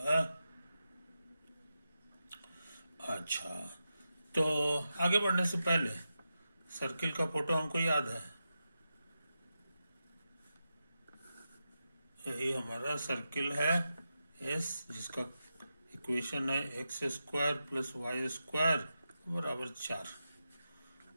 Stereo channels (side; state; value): both; inverted; correlation -0.89